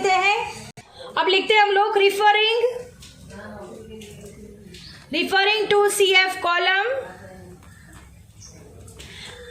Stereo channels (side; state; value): both; identical; correlation 1.00